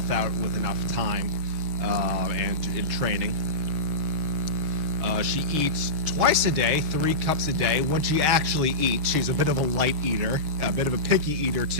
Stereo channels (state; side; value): late; left; 6.7 ms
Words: out with enough time and in training. She eats twice a day, 3 cups a day. When she actually eats, she's a bit of a light eater, a bit of a picky eater